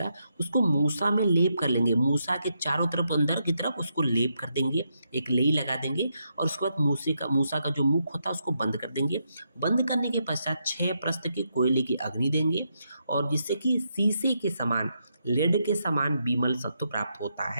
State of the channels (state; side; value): inverted; both; correlation -0.81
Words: उसको मूसा में लेप कर लेंगे, मूसा के चारों तरफ अंदर की तरफ उसको लेप कर देंगे, एक लेई लगा देंगे और उसके बाद मूसा का जो मुख होता है उसको बंद कर देंगे। बंद करने के पश्चात 6 प्रस्थ की कोयले की अग्नि देंगे और जिससे कि शीशे के समान, लेड के समान बिमल सत्व प्राप्त होता